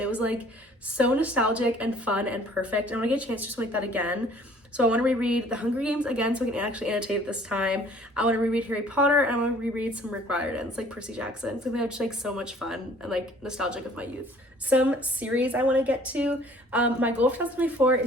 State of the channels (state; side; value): normal; both; correlation 0.55